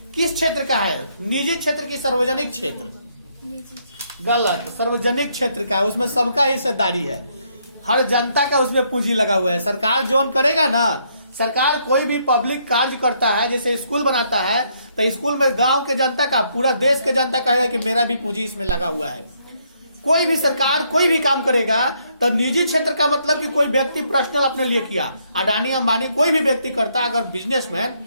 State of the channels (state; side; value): inverted; both; correlation -0.72